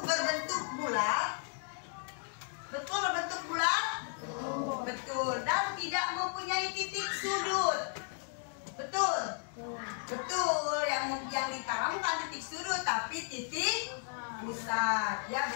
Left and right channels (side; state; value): right; silent; 55 dB below the other